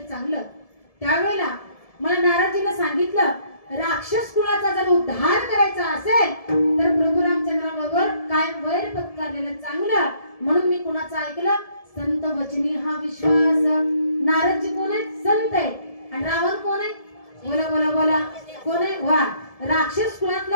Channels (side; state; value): right; late; 1.7 ms